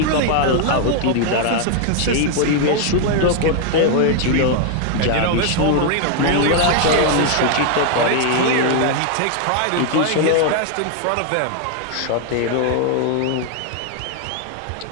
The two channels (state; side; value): different; both; correlation 0.00